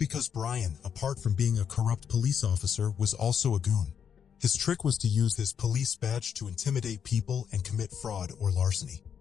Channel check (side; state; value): right; quieter; 7.8 dB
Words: Brian, apart from being a corrupt police officer, was also a goon. His trick was to use his police badge to intimidate people and commit fraud or larceny.